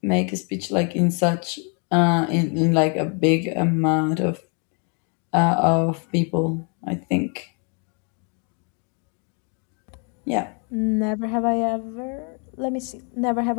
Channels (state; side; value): quieter; right; 37.7 dB